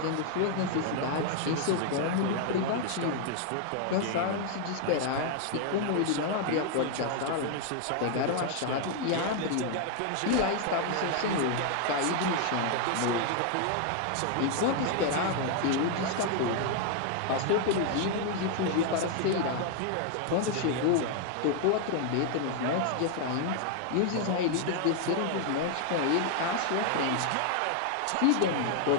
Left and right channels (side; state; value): both; different; correlation 0.00